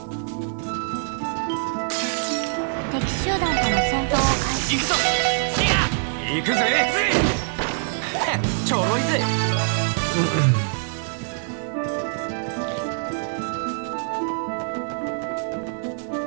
敵集団との戦闘を開始。行くぞ。行くぜ。ちょろいぜ。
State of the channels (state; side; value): silent; left; digital silence